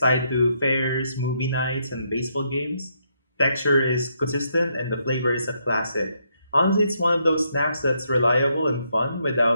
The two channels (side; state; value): both; inverted; correlation -0.76